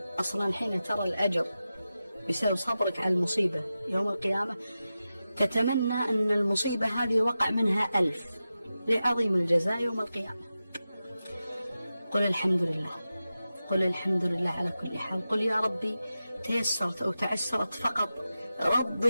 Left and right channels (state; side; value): inverted; both; correlation -0.92